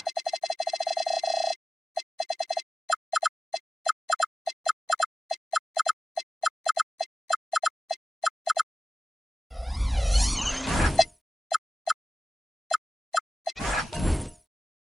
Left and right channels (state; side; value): normal; both; correlation 0.97